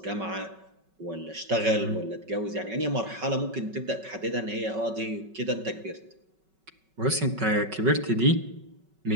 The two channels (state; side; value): late; left; 5.3 ms